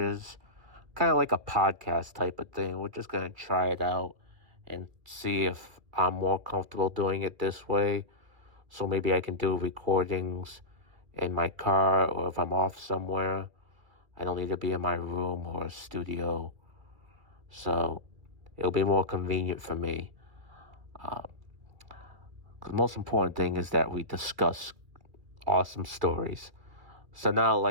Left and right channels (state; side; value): late; left; 2.3 ms